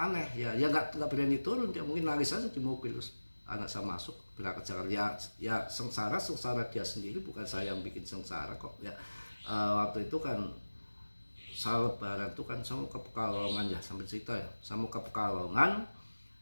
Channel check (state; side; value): inverted; both; correlation -1.00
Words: ya nggak berani turun, dia mungkin nangis saja di mobil. Terus anak saya masuk berangkat Jakarta, ya sengsara dia sendiri, bukan saya yang bikin sengsara kok ya. Waktu itu kan saya lebaran tuh kan saya mau ke Pekalongan ya, sambil cerita ya, saya mau ke Pekalongan,